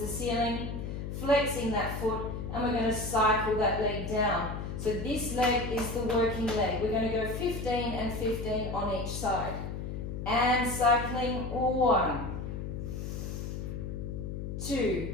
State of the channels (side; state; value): left; noise; hum, 5 dB below the sound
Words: ceiling, flexing that foot, and we're going to cycle that leg down. So this leg is the working leg. We're going to go 15 and 15 on each side. And cycling 1, 2,